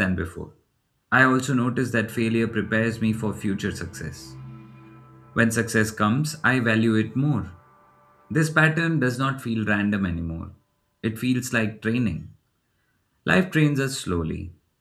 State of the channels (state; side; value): identical; both; correlation 1.00